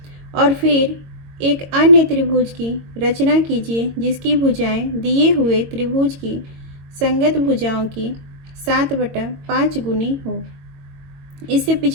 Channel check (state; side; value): late; left; 22 ms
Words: और फिर एक अन्य त्रिभुज की रचना कीजिए जिसकी भुजाएं दिए हुए त्रिभुज की संगत भुजाओं की 7/5 गुनी हो। इससे